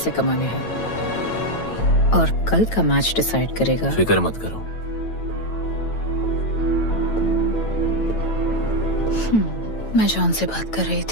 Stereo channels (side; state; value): right; late; 9.1 ms